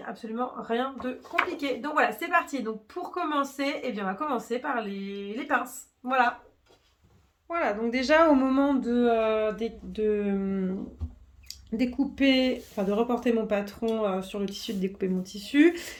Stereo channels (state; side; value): identical; both; correlation 1.00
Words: a absolument rien de compliqué. Donc voilà, c'est parti. Donc pour commencer, eh bien, on va commencer par les pinces. Voilà. Voilà, donc déjà au moment de découper, enfin de reporter mon patron sur le tissu, de découper mon tissu,